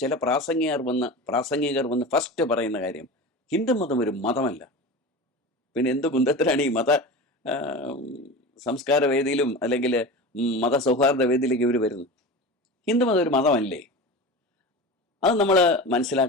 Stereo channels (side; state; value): both; normal; correlation 0.30